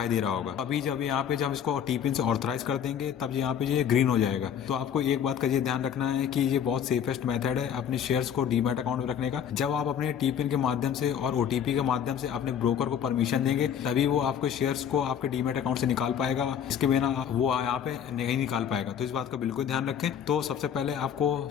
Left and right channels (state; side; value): quieter; right; 8.6 dB